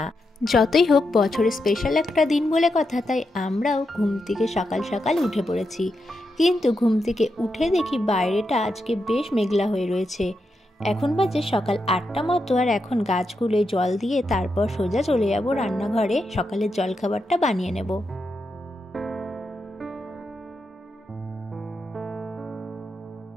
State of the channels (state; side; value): normal; both; correlation 0.85